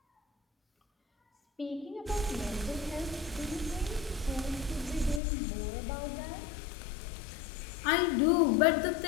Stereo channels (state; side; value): drops out; right; at 5.2 s